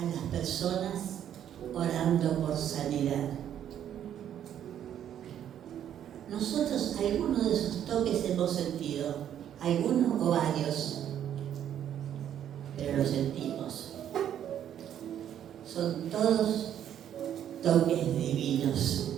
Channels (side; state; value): left; quieter; 10.1 dB